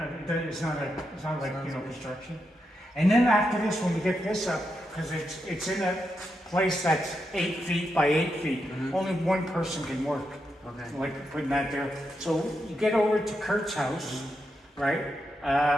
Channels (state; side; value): normal; both; correlation 0.84